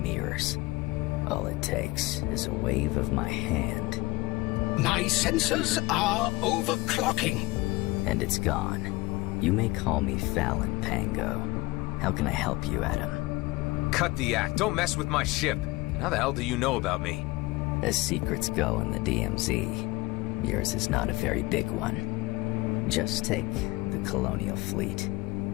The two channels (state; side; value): quieter; right; 21.3 dB